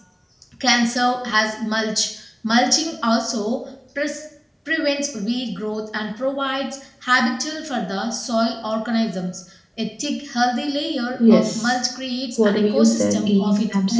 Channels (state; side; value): identical; both; correlation 1.00